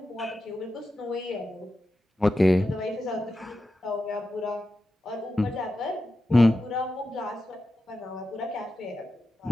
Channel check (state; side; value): normal; both; correlation 0.90